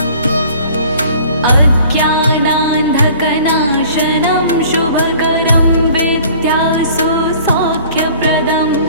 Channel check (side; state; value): both; inverted; correlation -0.50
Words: अज्ञानान्धकनाशनं शुभकरं विद्यासु सौख्यप्रदं